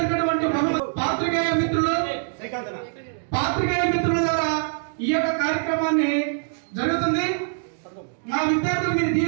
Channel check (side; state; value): left; silent; digital silence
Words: బహుమతి. పాత్రికేయ మిత్రుల ద్వారా ఈ యొక్క కార్యక్రమాన్ని జరుగుతుంది. మా విద్యార్థులు మీరు